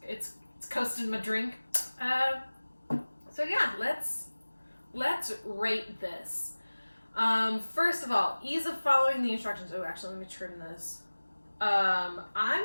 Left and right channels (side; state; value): both; inverted; correlation -1.00